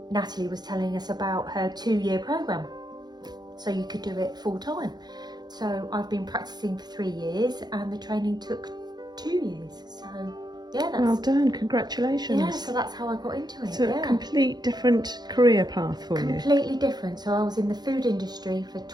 Natalie was telling us about her 2-year program, so you could do it full time. So I've been practicing for 3 years, and the training took 2 years. So yeah, that's well done, congratulations. Yeah, so that's how I got into it. It's a complete different career path for you. Completely different. So I was in the food industry for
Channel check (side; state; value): left; late; 0.20 ms